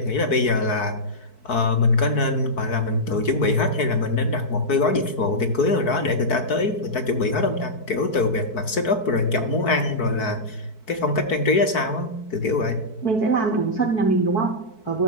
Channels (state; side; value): late; right; 4.6 ms